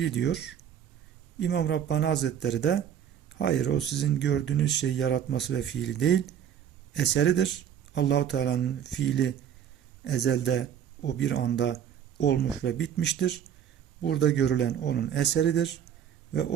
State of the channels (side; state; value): left; quieter; 9.2 dB